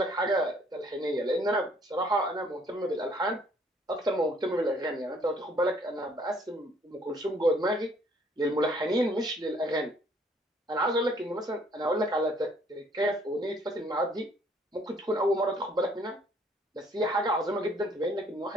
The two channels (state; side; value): normal; both; correlation 0.62